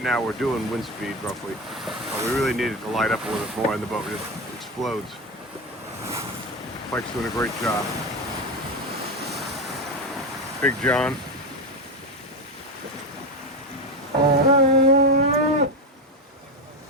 now we're doing wind speed roughly. But we really need it to light up a little bit more and the boat just explodes. Pike's doing a great job. Big John. You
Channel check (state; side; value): normal; both; correlation 0.17